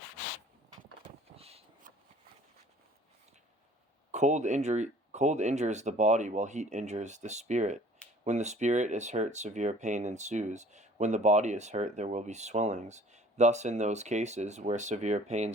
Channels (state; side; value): normal; both; correlation 0.52